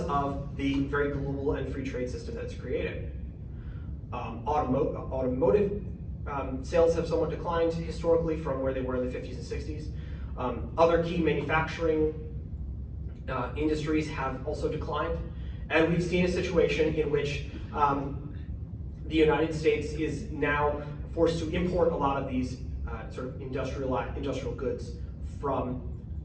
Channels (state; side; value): identical; both; correlation 1.00